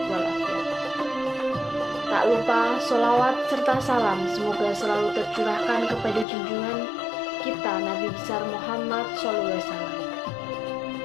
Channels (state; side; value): drops out; right; at 6.2 s